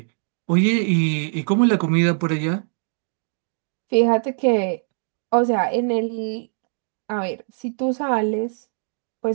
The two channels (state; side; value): silent; left; 64 dB below the other